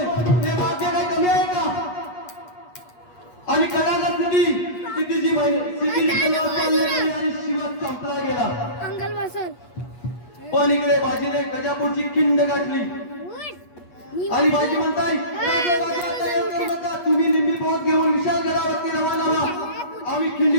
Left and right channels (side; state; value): right; late; 8.3 ms